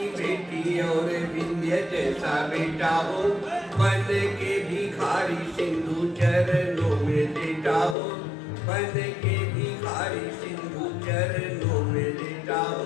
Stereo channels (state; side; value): drops out; right; at 8.0 s